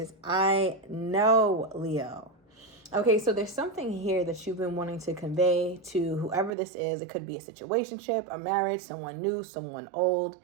I know, Leo. Okay, so there's something here that you've been wanting to convey to whoever this is. It could be a situationship, a marriage, someone new, someone old.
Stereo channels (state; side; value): drops out; left; at 6.5 s